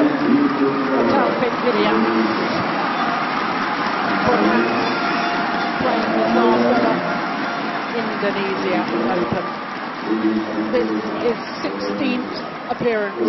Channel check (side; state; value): both; identical; correlation 1.00